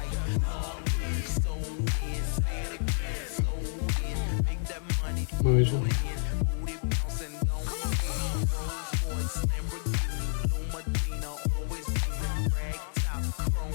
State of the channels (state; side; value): silent; right; digital silence